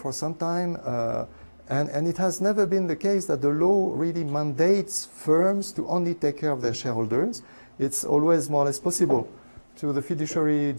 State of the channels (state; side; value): inverted; both; correlation -1.00